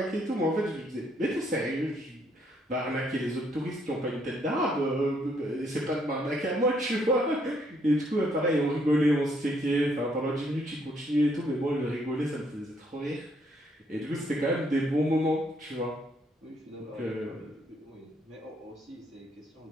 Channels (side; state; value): both; normal; correlation 0.70